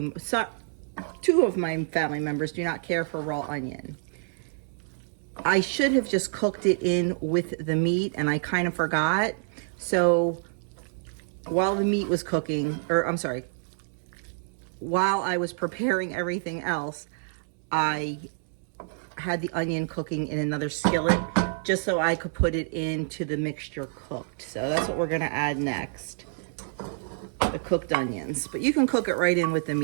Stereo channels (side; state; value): left; silent; digital silence